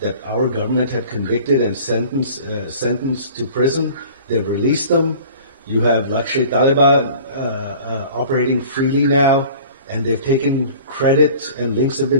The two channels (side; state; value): both; inverted; correlation -0.45